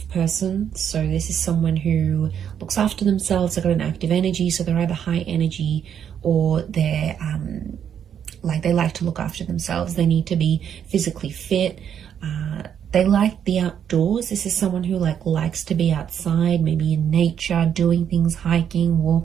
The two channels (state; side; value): quieter; left; 8.7 dB